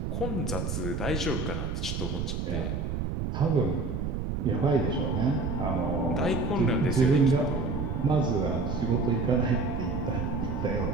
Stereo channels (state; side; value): noise; right; rumble, 2 dB below the sound